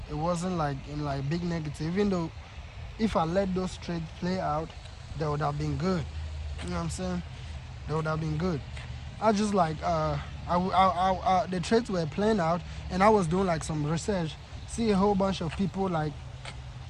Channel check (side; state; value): both; identical; correlation 1.00